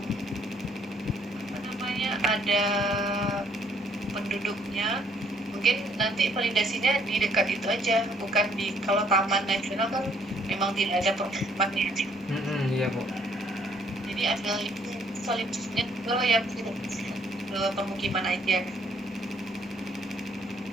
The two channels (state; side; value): normal; both; correlation 0.65